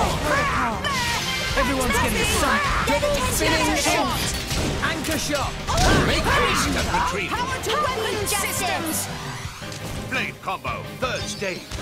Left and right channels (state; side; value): identical; both; correlation 1.00